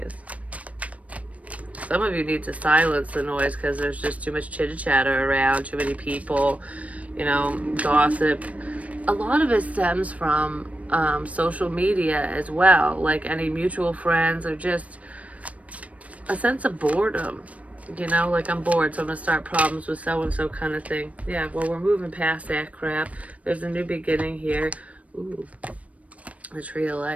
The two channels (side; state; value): left; late; 0.066 ms